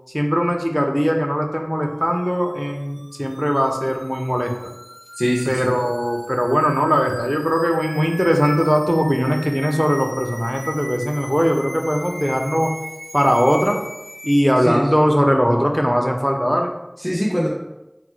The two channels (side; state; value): both; identical; correlation 1.00